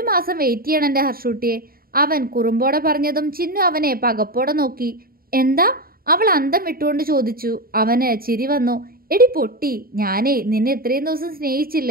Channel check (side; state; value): left; late; 0.43 ms